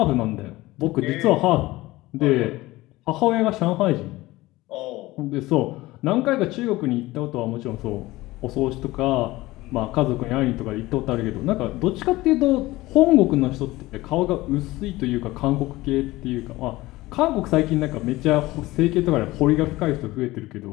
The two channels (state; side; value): quieter; right; 18.8 dB